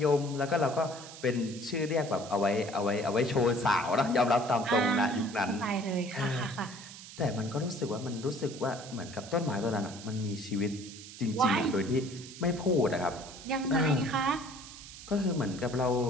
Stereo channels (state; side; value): noise; right; hiss, 15 dB below the sound